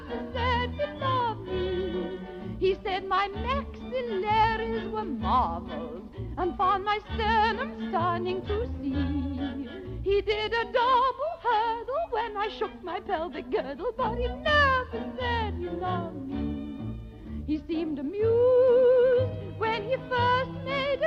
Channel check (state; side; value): identical; both; correlation 1.00